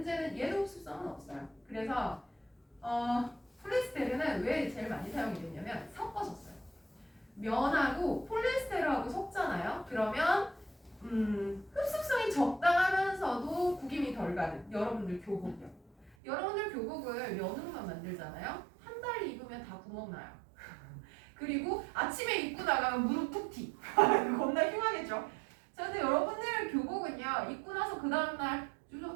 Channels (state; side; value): drops out; left; at 16.2 s